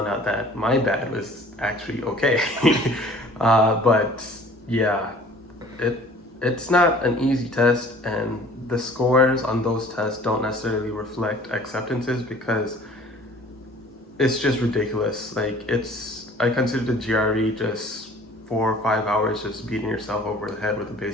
out that my bad was actually okay. But yeah, it's not an easy test, and the scores on those tests don't necessarily reflect acceptances because it's just ridiculous. Like I consider the GRE just 4 or 5 hours just beating yourself over the head with a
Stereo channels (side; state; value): both; normal; correlation 0.50